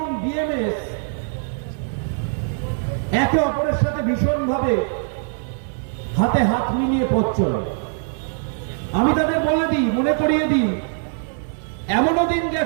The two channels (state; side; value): silent; left; digital silence